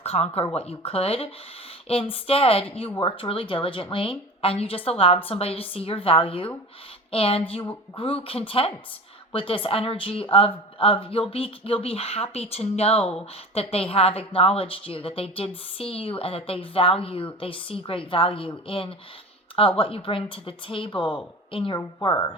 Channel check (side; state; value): both; normal; correlation 0.34